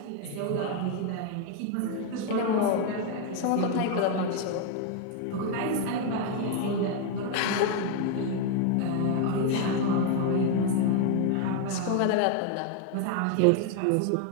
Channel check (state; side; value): different; both; correlation 0.01